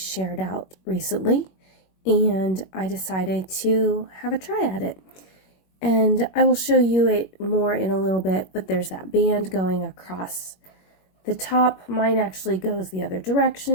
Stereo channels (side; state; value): right; late; 21 ms